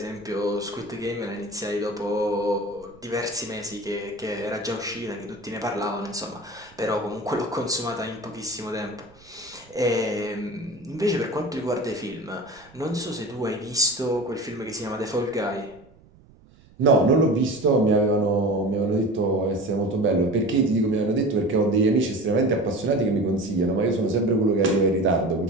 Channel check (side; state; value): right; noise; rumble, 26 dB below the sound